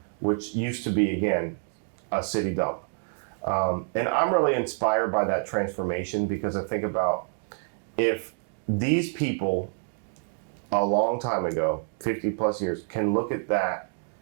which used to be, again, a city dump. And I'm really inspired by that transformation, because I think about if these people a long time ago, 50 plus years, can look at that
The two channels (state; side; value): silent; left; 60 dB below the other